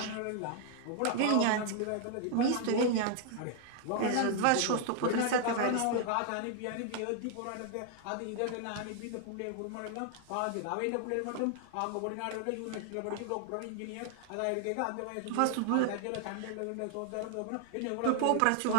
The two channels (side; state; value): both; different; correlation 0.00